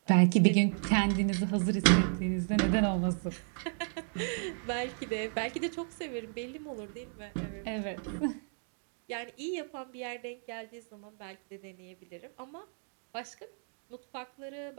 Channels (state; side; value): silent; left; 56 dB below the other